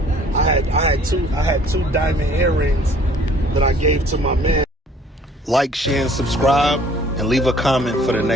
I had two diamond earrings that I gave to my man. Like, share, and subscribe, and leave a comment for the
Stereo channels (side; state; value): both; normal; correlation 0.55